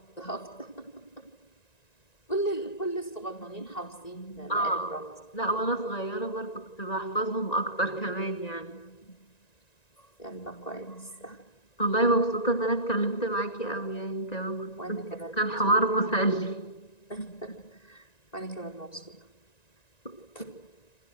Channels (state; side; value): late; right; 1.9 ms